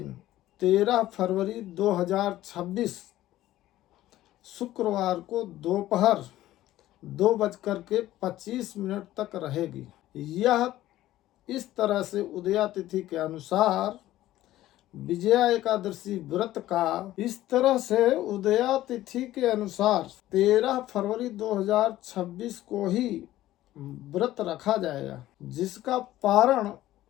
13 फरवरी 2026 शुक्रवार को दोपहर 2:25 तक रहेगी। यह इस तरह से उदया तिथि के अनुसार विजया एकादशी व्रत का 13 फरवरी 2026 को ही व्रत रखा जाएगा, जिसका पारण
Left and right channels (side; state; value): right; quieter; 14.7 dB